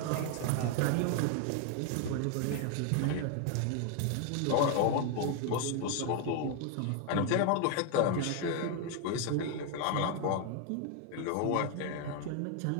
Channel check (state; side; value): different; both; correlation 0.01